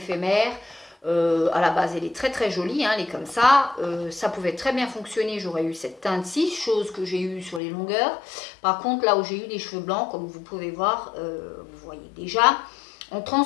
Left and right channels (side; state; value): right; drops out; at 7.6 s